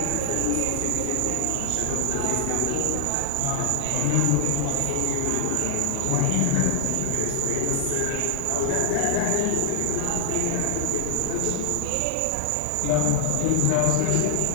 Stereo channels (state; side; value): different; both; correlation 0.00